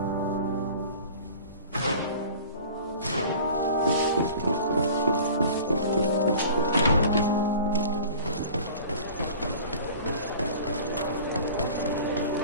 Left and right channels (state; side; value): inverted; both; correlation -0.42